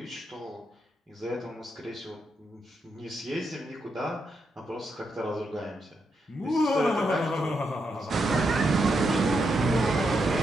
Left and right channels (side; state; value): both; normal; correlation 0.82